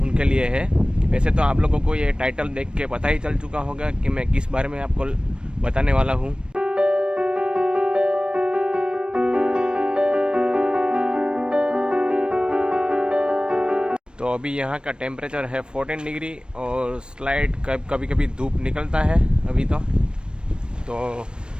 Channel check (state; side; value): late; left; 0.054 ms